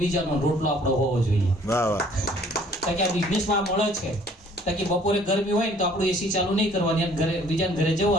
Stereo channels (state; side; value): normal; both; correlation 0.57